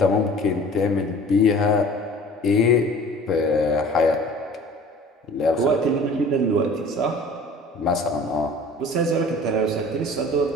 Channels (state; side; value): normal; both; correlation 0.45